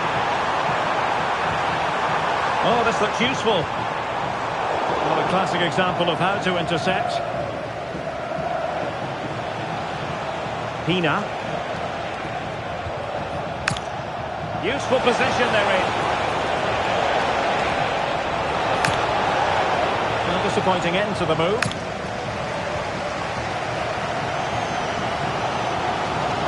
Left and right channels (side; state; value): both; identical; correlation 1.00